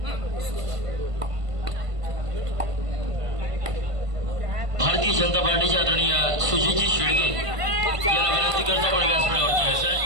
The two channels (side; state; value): left; late; 1.5 ms